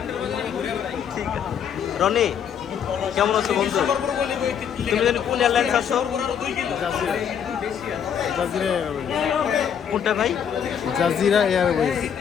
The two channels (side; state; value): right; quieter; 8.2 dB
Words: ঠিক আছে। রনি কেমন আছো বন্ধু? তুমি জানি কোন এয়ারলাইন্স আছো? জাজিরা কোনটা ভাই? Jazeera Airways.